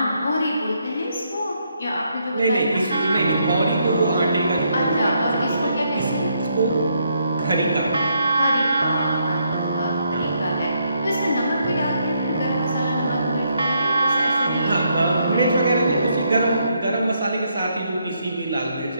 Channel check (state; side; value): inverted; both; correlation -0.75